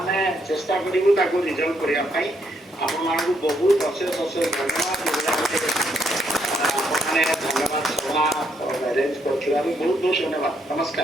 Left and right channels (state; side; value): normal; both; correlation 0.74